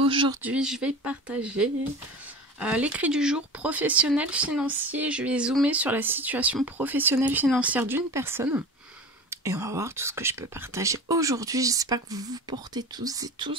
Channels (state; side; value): normal; both; correlation 0.34